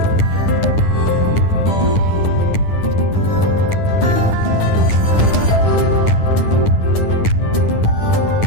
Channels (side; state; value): right; late; 10 ms